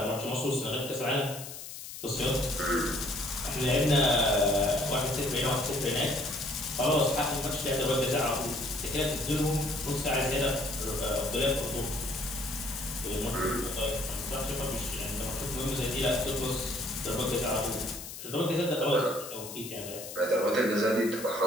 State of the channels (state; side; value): noise; left; hiss, 11 dB below the sound